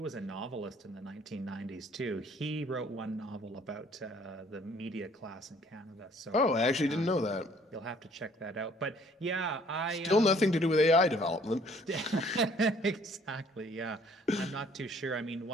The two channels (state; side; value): normal; both; correlation 0.59